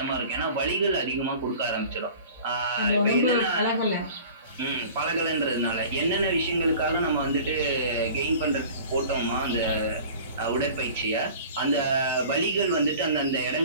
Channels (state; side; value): inverted; both; correlation -0.43